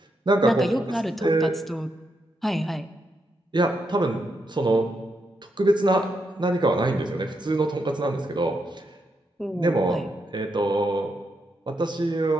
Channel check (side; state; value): both; normal; correlation 0.81